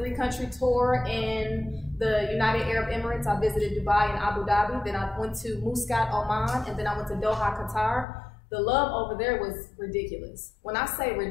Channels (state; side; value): drops out; right; at 8.1 s